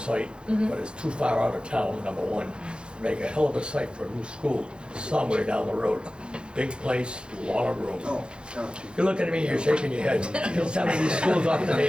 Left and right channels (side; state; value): left; late; 0.053 ms